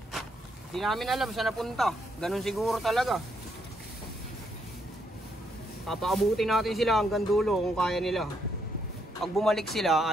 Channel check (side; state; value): both; normal; correlation 0.75